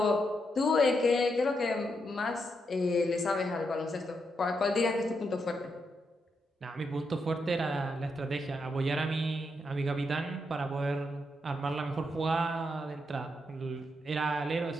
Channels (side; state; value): both; normal; correlation 0.81